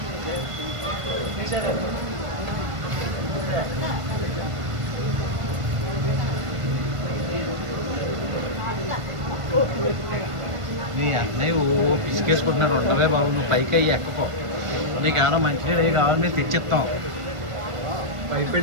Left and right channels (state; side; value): late; left; 1.5 ms